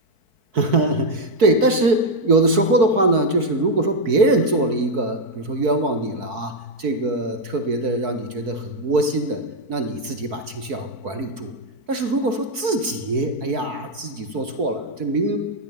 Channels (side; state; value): left; late; 4.6 ms